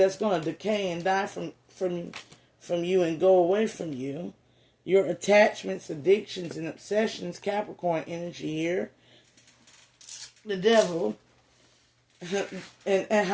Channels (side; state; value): both; identical; correlation 1.00